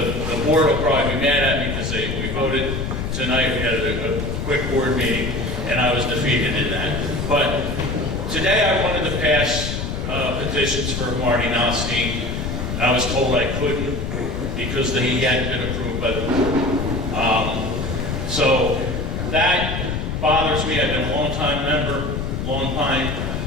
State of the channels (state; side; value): noise; left; rumble, 3 dB below the sound